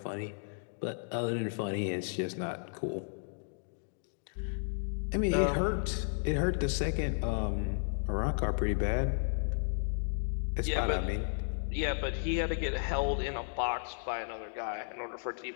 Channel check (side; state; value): right; silent; digital silence